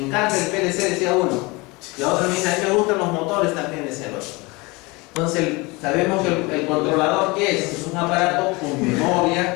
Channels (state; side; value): quieter; right; 25.0 dB